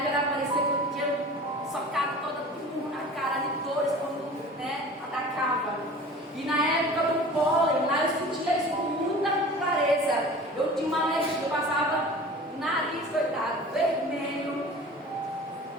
era parecia que eu tinha socado toda na cara de dores quando, né, atacava. E na época do pólen, lá eu sentia isso com muita clareza. Eu tinha uma alergia, eu passava o nariz, coitado, vermelho,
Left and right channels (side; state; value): both; normal; correlation 0.41